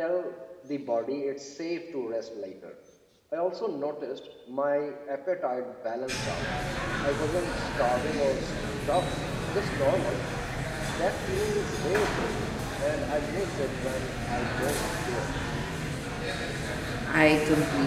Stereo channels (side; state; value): both; identical; correlation 1.00